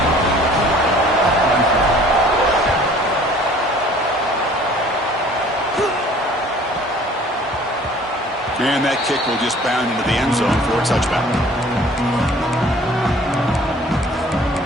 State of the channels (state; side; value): normal; both; correlation 0.52